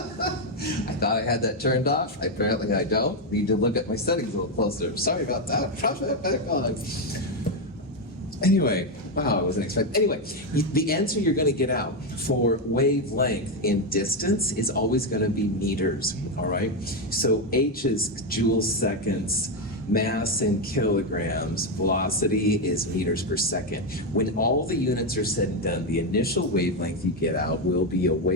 I thought I had that turned off. Apparently I don't. Need to look at my settings a little closer. Sorry about that. Drop that back on. Anyway, wow, I wasn't expecting. Anyway, the answer you're going to get out for wavelength in distance is always going to be meters, all right? So H is joules seconds, mass in kilograms, velocity is meters per second. When all the units are said and done, the initial wavelength you get out will be a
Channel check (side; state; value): both; normal; correlation 0.06